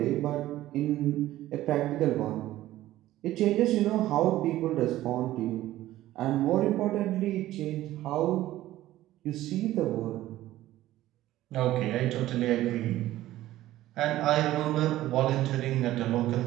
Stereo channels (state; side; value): quieter; left; 15.0 dB